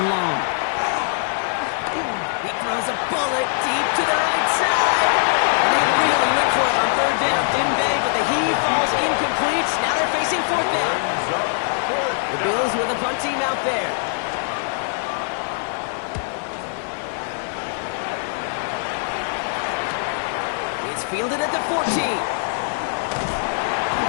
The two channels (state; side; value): silent; right; 64 dB below the other